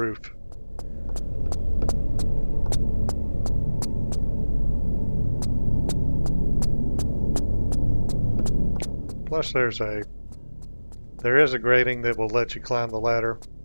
Plus there is a grating that will let you climb the ladder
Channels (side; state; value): both; inverted; correlation -1.00